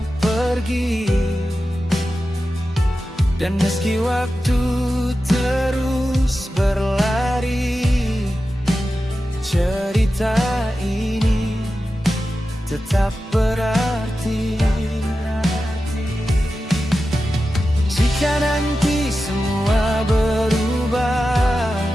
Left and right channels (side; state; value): both; normal; correlation 0.92